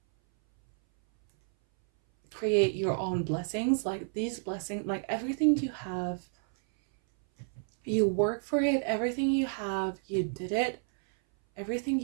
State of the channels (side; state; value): left; silent; 58 dB below the other